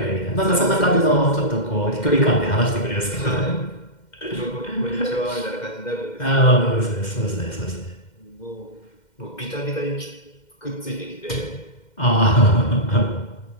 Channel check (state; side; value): late; right; 2.1 ms